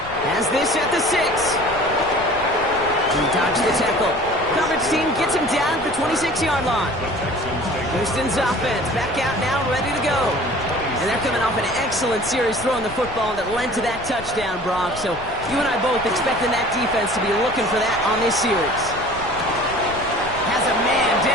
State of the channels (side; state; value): left; noise; rumble, 15 dB below the sound